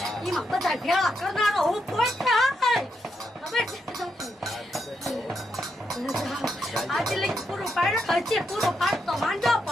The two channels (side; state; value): both; normal; correlation 0.82